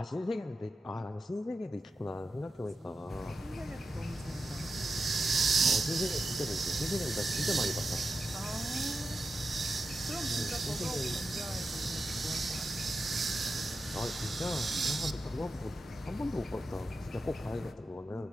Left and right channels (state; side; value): normal; both; correlation 0.89